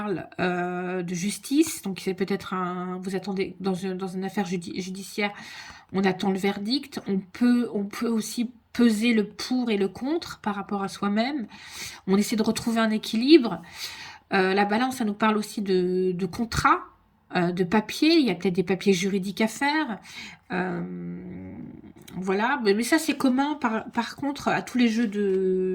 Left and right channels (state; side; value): identical; both; correlation 1.00